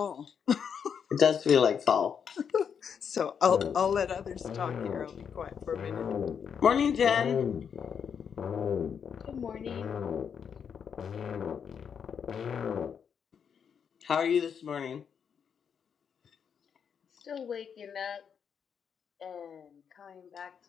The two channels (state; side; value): quieter; right; 7.2 dB